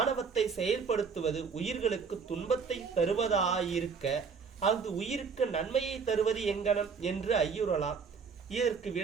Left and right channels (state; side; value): quieter; left; 5.6 dB